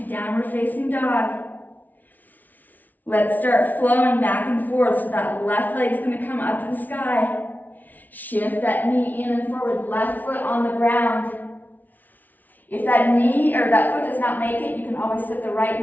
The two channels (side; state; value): right; late; 0.080 ms